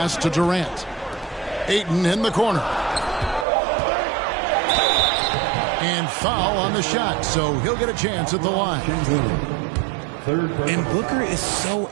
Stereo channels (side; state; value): left; drops out; at 3.5 s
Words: to Durant. Ayton in the corner. And foul on the shot, so he'll get a chance at the line. And Booker is so